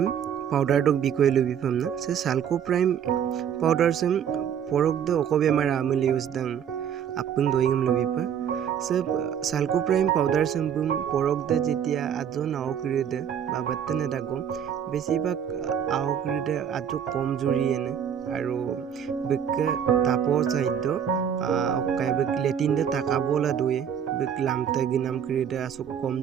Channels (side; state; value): left; quieter; 8.5 dB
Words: powder dog bikoy lubi pamna. Se salco prime powder sem porok de okobe mara amuli use dang apung doingam lubi pa. Se salco prime powder sem bum porok de jetia ajo nao kiri de babatte ne dago. বেছিভাগ আউকৰিতে আজু কম জুৰি এনে আৰু বেকে তাপৰ side অকাই back লেটিনদে তাকাবলা দুয়ে back লামতে গিনাম কৰিতে আসু কম